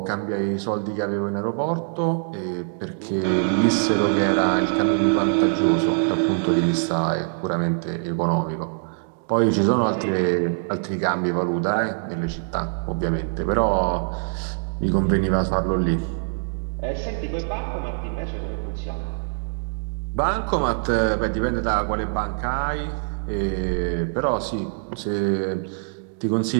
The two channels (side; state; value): left; silent; digital silence